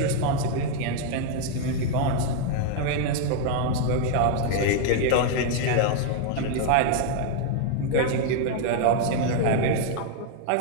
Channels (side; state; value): both; different; correlation 0.00